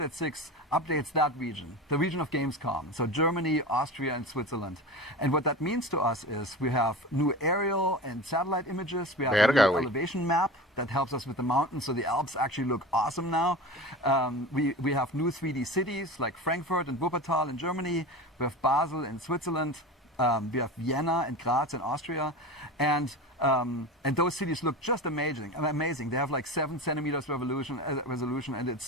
6 updates that region, the region of Gamescom. So Germany, Austria, and Switzerland. And what that means to us is we have new aerial and satellite images. We have a new elevation map that helps us with the mountains. So the Alps actually look awesome now. We have new 3D cities like Frankfurt and Wuppertal in Germany. We have Basel in Switzerland. We have Vienna and Graz in Austria, and those cities look just amazing. They have like 7 centimeters resolution, and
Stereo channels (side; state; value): both; normal; correlation 0.30